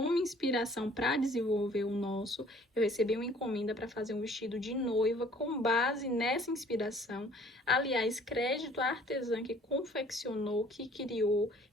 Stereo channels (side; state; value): both; normal; correlation 0.55